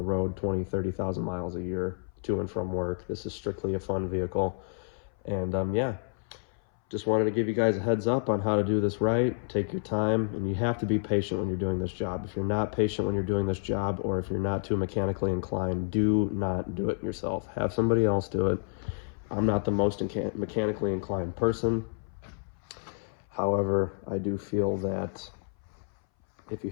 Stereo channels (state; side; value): silent; right; 58 dB below the other